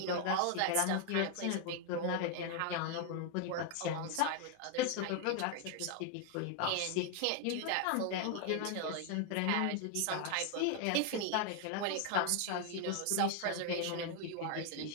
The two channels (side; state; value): both; different; correlation 0.00